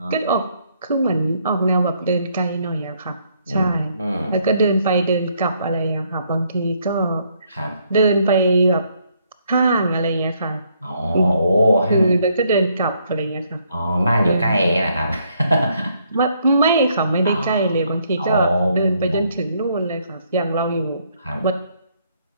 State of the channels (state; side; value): inverted; both; correlation -0.70